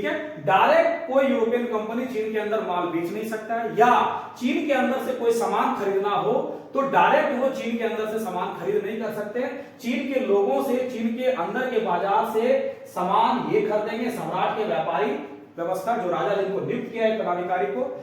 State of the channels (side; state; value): both; identical; correlation 1.00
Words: है, डायरेक्ट कोई यूरोपियन कंपनी चीन के अंदर माल बेच नहीं सकता है, या चीन के अंदर से कोई सामान खरीदना हो तो डायरेक्ट वो चीन के अंदर से सामान खरीद नहीं कर सकते। चीन के लोगों से, चीन के अंदर के बाजार से सामान ये खरीदेंगे सम्राट के व्यापारी व्यवस्था, जो राजा जिनको नियुक्त किया है पदाधिकारी को,